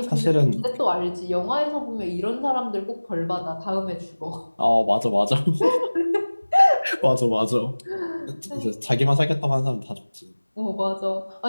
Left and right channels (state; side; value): inverted; both; correlation -1.00